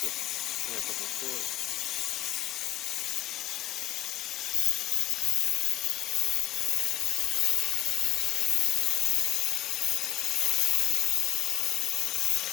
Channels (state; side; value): quieter; right; 14.8 dB